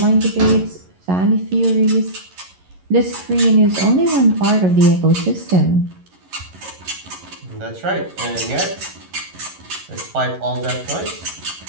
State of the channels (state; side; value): late; left; 11 ms